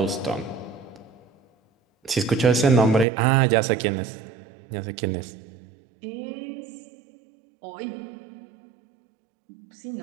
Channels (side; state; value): left; drops out; at 3.1 s